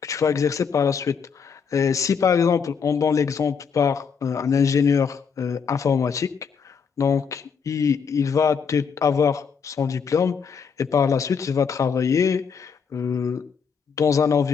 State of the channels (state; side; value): quieter; right; 6.2 dB